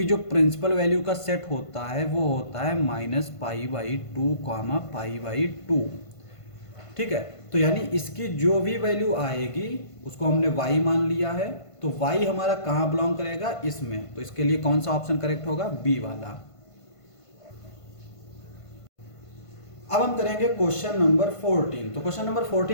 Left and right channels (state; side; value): late; right; 1.5 ms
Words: जो प्रिंसिपल वैल्यू का सेट होता है वो होता है -π/2, π/2, ठीक है। तो यानी इसकी जो भी वैल्यू आएगी उसको हमने y मान लिया है, तो y हमारा कहाँ बिलोंग करेगा, इसमें। तो इसके लिए कौन सा ऑप्शन करेक्ट होगा, बी वाला। अब हम करेंगे क्वेश्चन नंबर 14। तो क्वेश्चन नंबर